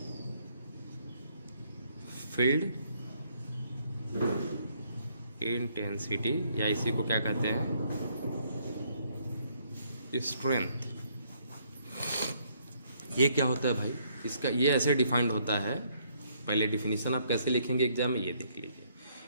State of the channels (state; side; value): inverted; both; correlation -0.69